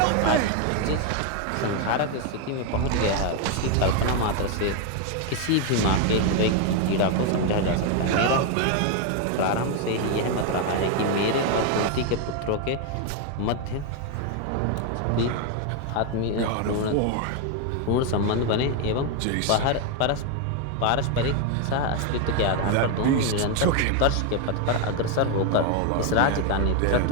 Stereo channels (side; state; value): both; different; correlation 0.01